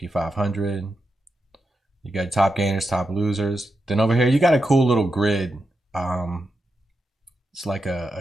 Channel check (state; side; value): normal; both; correlation 0.87